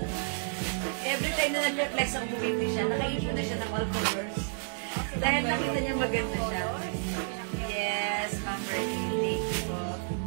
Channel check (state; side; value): silent; left; digital silence